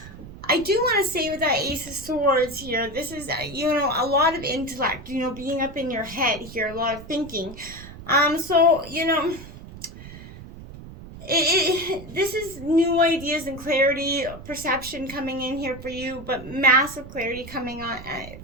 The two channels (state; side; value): noise; right; rumble, 15 dB below the sound